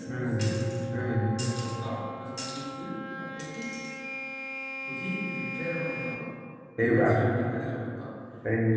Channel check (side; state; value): both; identical; correlation 1.00